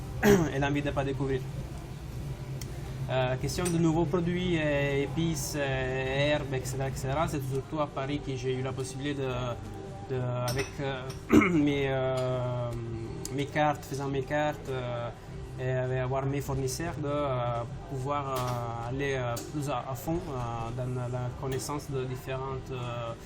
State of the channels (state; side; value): identical; both; correlation 1.00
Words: et l'envie de ne pas découvrir. Question de nouveaux produits, épices, herbes, etc. C'est surtout à Paris que j'ai eu la possibilité avec mes cartes, faisant mes cartes et avoir mes fournisseurs, de pouvoir aller plus à fond dans la connaissance de différents